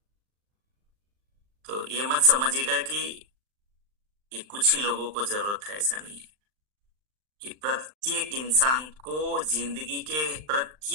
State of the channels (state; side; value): late; left; 39 ms